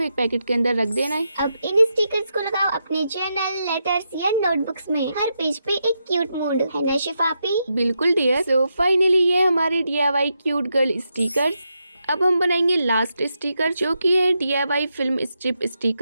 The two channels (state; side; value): inverted; both; correlation -0.84